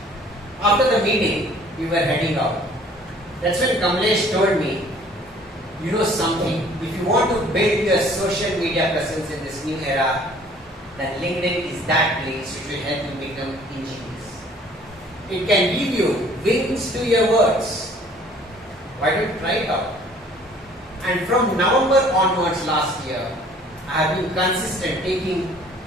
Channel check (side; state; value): both; normal; correlation 0.55